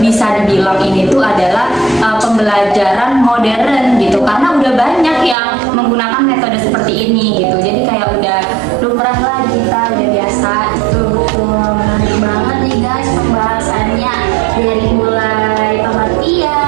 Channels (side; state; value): left; drops out; at 5.4 s